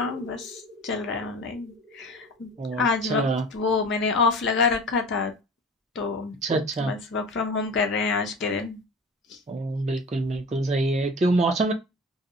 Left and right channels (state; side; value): normal; both; correlation 0.37